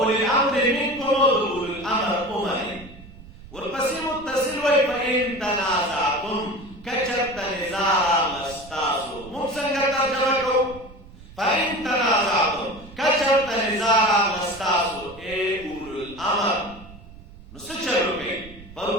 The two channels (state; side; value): noise; right; rumble, 19 dB below the sound